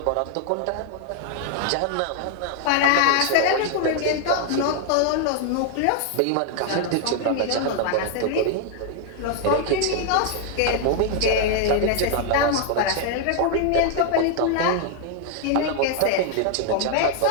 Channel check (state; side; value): different; both; correlation 0.00